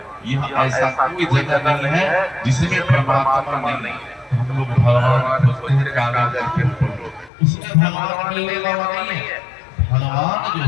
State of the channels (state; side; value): drops out; right; at 7.3 s